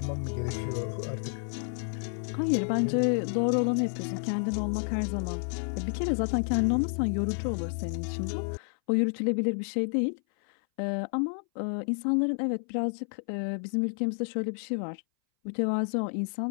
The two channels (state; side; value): silent; right; 58 dB below the other